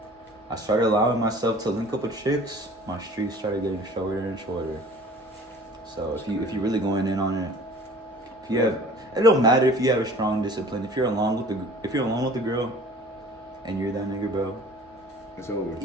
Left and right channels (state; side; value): normal; both; correlation 0.47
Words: I started allowing myself to link up with chicks. My streaks started getting shorter and shorter. So if you really going in on it, it don't matter if you have a strong discipline. If you're alone with the girl, and you're that nigga, bro, It's over.